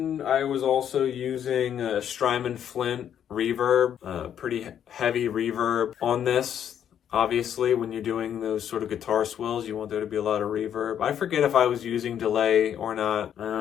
I was also using a Strymon Flint reverb, pretty heavy reverb on this. Obviously, when you're doing those sort of guitar swells, you want there to be a lot of reverb. I forget if I was using delay or not.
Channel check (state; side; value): quieter; right; 9.4 dB